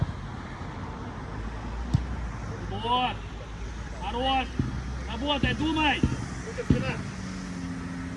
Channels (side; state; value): both; identical; correlation 1.00